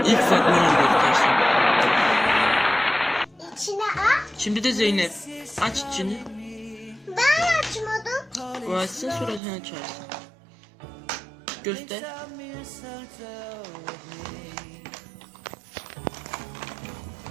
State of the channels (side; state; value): left; drops out; at 9.4 s